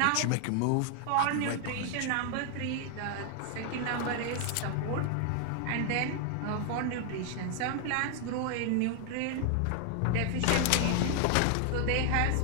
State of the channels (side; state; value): both; different; correlation 0.00